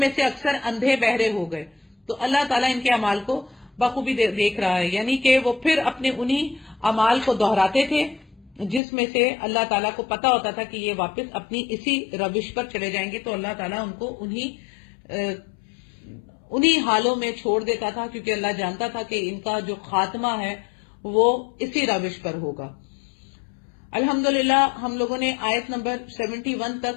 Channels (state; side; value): drops out; right; at 8.8 s